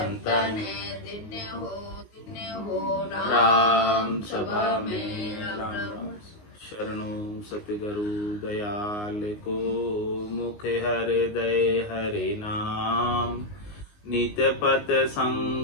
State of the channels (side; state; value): right; late; 19 ms